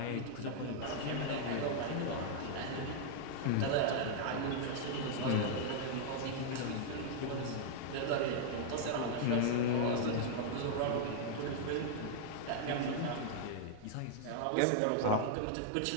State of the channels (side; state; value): both; different; correlation -0.01